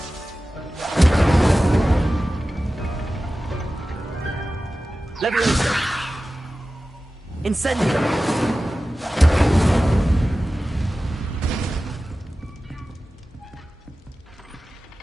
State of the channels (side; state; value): both; normal; correlation 0.95